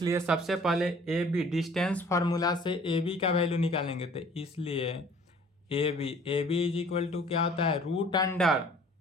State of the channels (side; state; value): both; normal; correlation 0.52